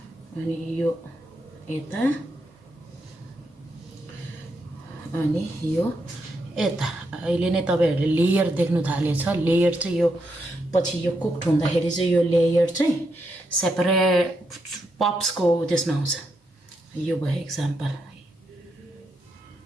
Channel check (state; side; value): normal; both; correlation 0.81